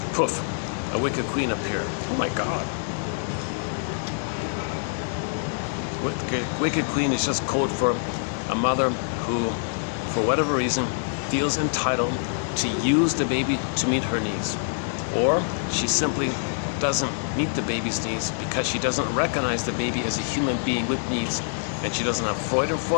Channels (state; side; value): silent; right; 61 dB below the other